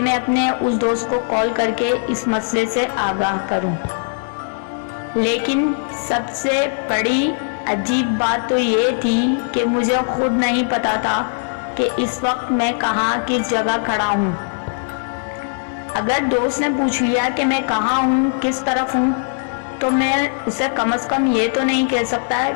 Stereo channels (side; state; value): right; silent; digital silence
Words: अपने उस दोस्त को कॉल करके इस मसले से आगाह करूं। लेकिन सबसे बड़ी अजीब बात तो ये थी कि मुझे खुद नहीं पता था कि इस वक्त मैं कहाँ किस जगह खड़ा हूँ। अगर दोस्त ने पूछ लिया कि मैं कहाँ हूँ, किस तरफ हूँ, तो मैं उसे कम से कम ये तो नहीं कह सकता